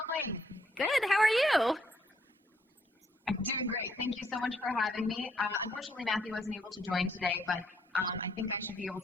Good, how are you? I'm doing great. Thank you so much for having me. Unfortunately, Matthew wasn't able to join today, but I think I should be able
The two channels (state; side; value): normal; both; correlation 0.71